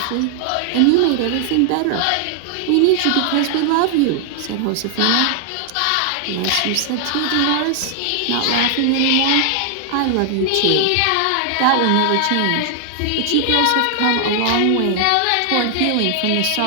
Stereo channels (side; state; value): both; different; correlation 0.00